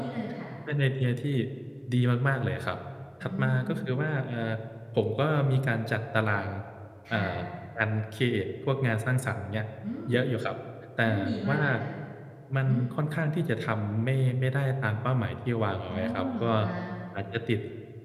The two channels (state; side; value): identical; both; correlation 1.00